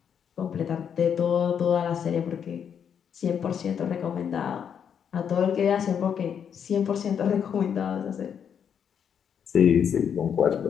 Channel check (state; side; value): quieter; right; 7.9 dB